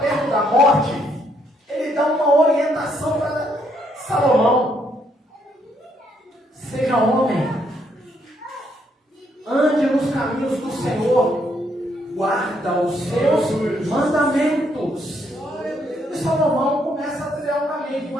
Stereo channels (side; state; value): both; normal; correlation 0.72